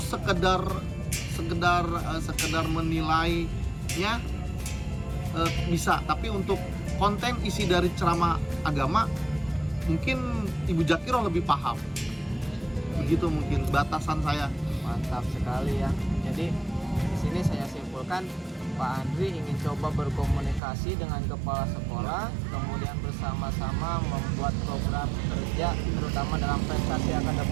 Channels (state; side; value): drops out; left; at 20.6 s